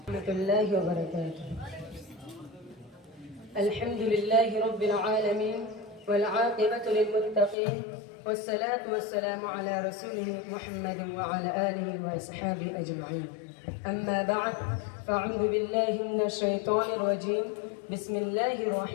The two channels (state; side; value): drops out; right; at 7.6 s